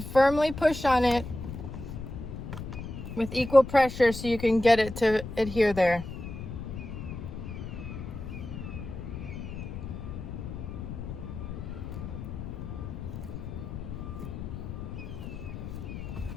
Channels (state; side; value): noise; left; rumble, 8 dB below the sound